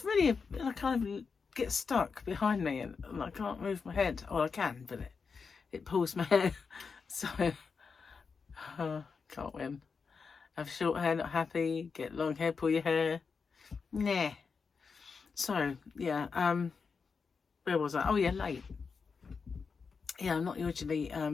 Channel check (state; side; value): quieter; right; 5.3 dB